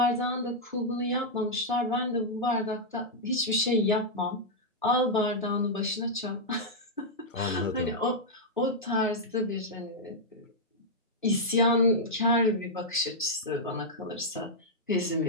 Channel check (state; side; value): normal; both; correlation -0.06